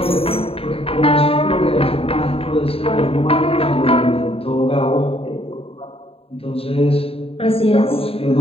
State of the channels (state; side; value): late; right; 0.28 ms